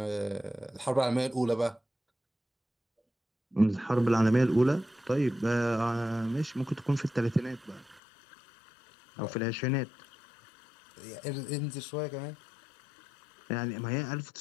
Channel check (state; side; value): drops out; right; at 8.0 s